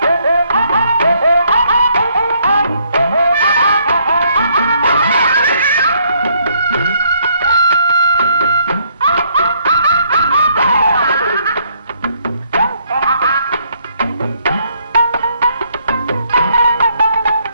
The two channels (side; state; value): both; inverted; correlation -0.69